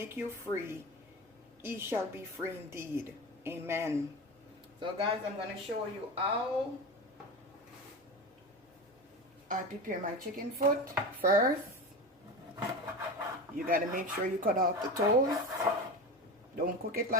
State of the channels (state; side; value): normal; both; correlation 0.27